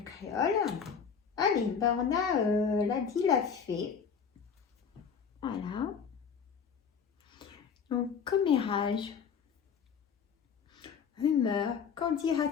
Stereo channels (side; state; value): right; quieter; 6.6 dB